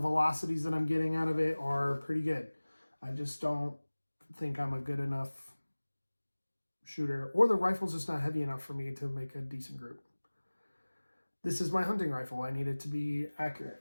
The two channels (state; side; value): inverted; both; correlation -1.00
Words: that I'm getting out of it, are pretty good. I just don't think I'm a good enough shooter, or the rifle's just not heavy enough for me to make a decent group. This is my hunting rifle. I need it to be